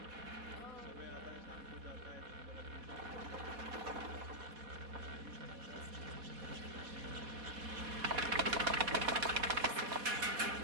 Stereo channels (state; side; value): late; left; 4.2 ms